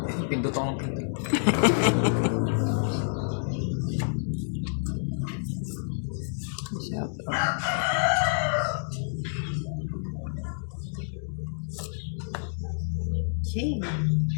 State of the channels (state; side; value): silent; right; digital silence